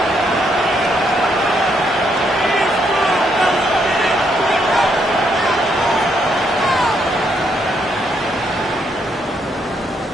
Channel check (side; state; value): both; normal; correlation 0.74